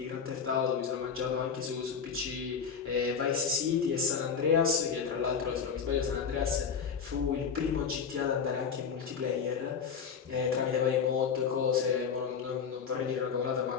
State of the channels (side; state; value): right; quieter; 6.4 dB